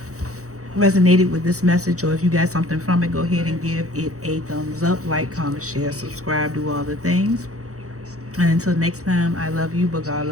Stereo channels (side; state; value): left; late; 0.65 ms